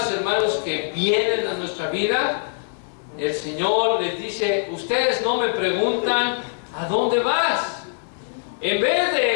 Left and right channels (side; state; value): right; silent; 58 dB below the other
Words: hermanos, que vienen a nuestra vida? El Señor les dice, ustedes no me preguntan ¿a dónde vas? En vez